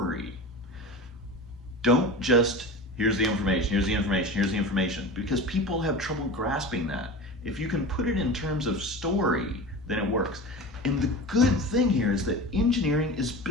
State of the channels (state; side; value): normal; both; correlation 0.31